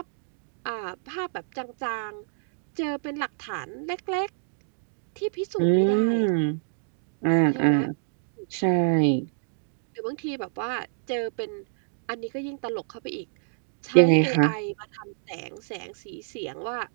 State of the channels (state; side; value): silent; left; digital silence